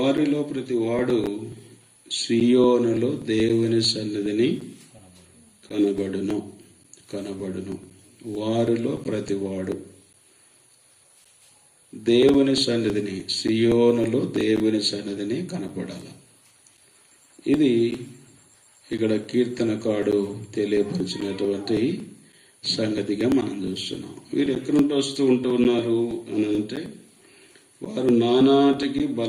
ప్రతి వాడు సియోనులో దేవుని సన్నిధిని కనబడును. వారిలో ప్రతివాడు దేవుని సన్నిధిని, సియోనులో దేవుని సన్నిధిని కనపడాలి. ఇది ఇక్కడ కీర్తనకాడు తెలియపరిచినటువంటి సంగతిగా మనం చూస్తున్నాం. వీరు ఎక్కడి నుండి వస్తూ ఉన్నారు అని అంటే, వారు నానాటికి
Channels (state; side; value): identical; both; correlation 1.00